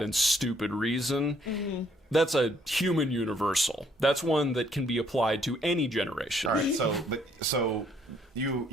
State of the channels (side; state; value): both; normal; correlation 0.66